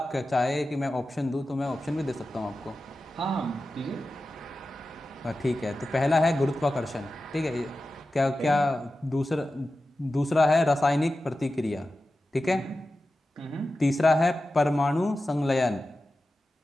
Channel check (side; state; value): both; normal; correlation 0.93